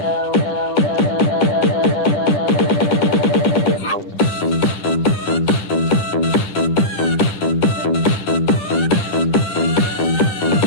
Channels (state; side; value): late; right; 9.9 ms